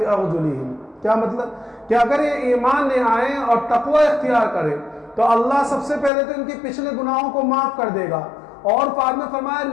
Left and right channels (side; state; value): right; drops out; at 6.1 s